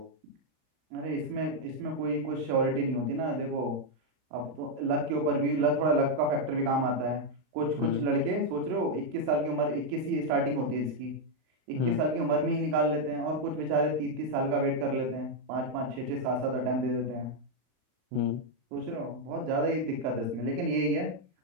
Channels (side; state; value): left; late; 39 ms